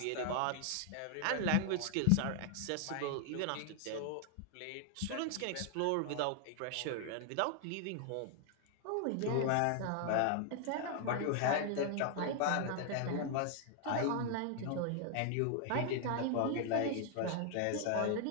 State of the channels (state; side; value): different; both; correlation 0.00